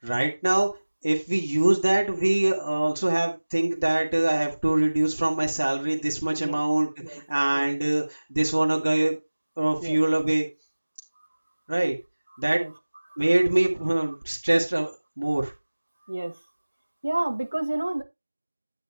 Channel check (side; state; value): both; inverted; correlation -1.00